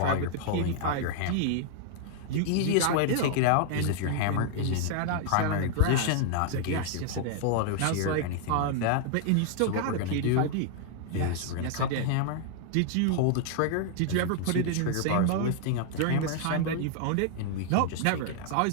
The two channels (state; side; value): different; both; correlation -0.01